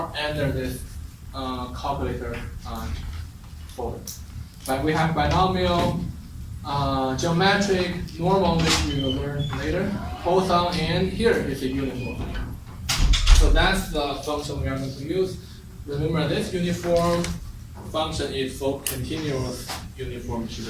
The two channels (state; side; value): identical; both; correlation 1.00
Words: under this calculator folder. But we have binomial, geometric, normal, which we will learn later, Poisson, and here is a uniform. So that's the function we are going to use. Remember, this uniform function is for continuous uniform